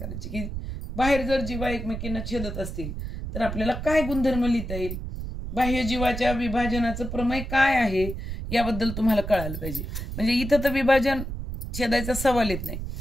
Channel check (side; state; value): right; noise; rumble, 6 dB below the sound